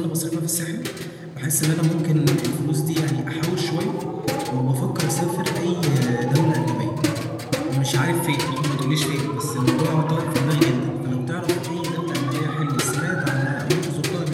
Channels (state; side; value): identical; both; correlation 1.00